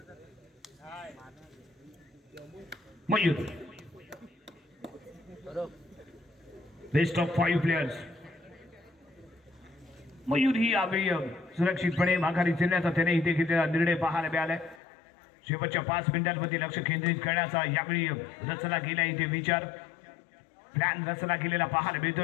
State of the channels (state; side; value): drops out; right; at 14.8 s